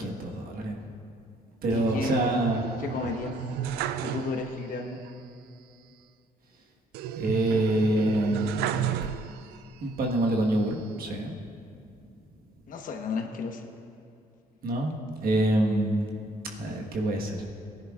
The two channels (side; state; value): both; normal; correlation 0.64